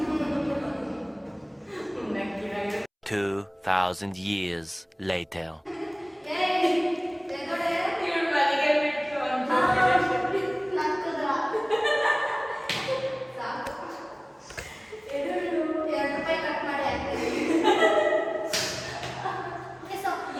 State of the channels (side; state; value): both; identical; correlation 1.00